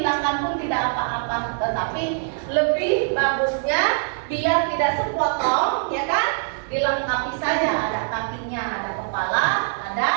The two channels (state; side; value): silent; left; 60 dB below the other